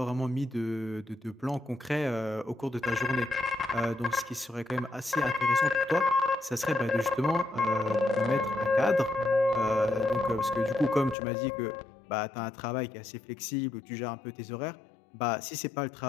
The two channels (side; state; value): right; drops out; at 11.2 s